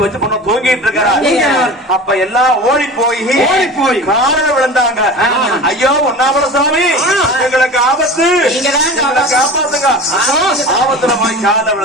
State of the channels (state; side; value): normal; both; correlation 0.35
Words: வச்சு பொண்ணு தூங்கிட்டு இருக்கிறாங்க. அப்ப எல்லாம் ஓடி போய் காலில் விழுந்தாங்க. ஐயோ பொன்னாமல சாமி, எங்களுக்கு ஆபத்து, காப்பாத்துங்க. ஆபத்துல போய் காலில்